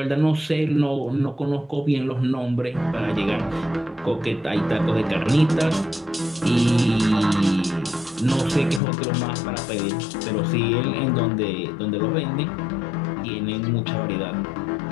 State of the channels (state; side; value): drops out; right; at 8.8 s